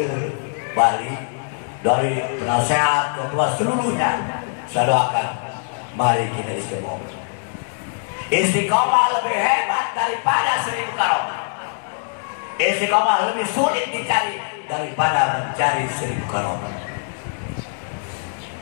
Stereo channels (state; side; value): silent; right; digital silence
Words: Bali dari penasehat ketua seluruhnya, saya doakan mari kita istiqomah. Istiqomah lebih hebat daripada 1000 karomah. Istiqomah lebih sulit dicari daripada mencari 1000 karomah.